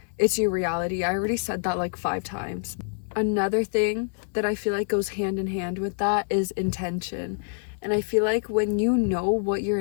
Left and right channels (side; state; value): right; silent; digital silence